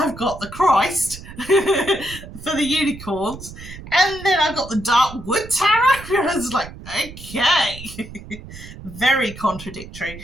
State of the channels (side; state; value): right; noise; rumble, 14 dB below the sound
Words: got the Christ for the unicorns, and then I've got the Darkwood Tarot. I was like, okay. Very contradictory.